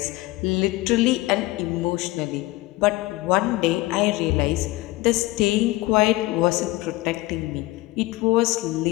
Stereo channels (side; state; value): right; quieter; 19.5 dB